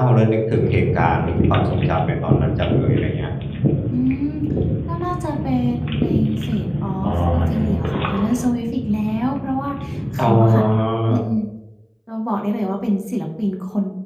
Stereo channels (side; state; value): both; identical; correlation 1.00